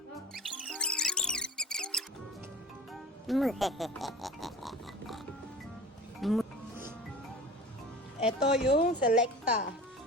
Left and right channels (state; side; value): normal; both; correlation 0.37